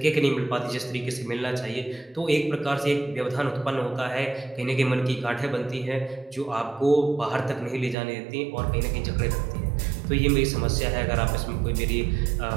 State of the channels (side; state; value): left; drops out; at 8.0 s